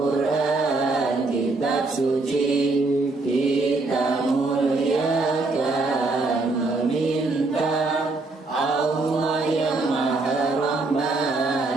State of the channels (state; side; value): quieter; left; 3.4 dB